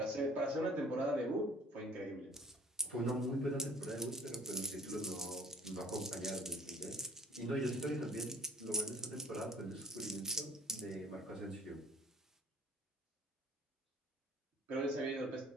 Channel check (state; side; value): normal; both; correlation 0.54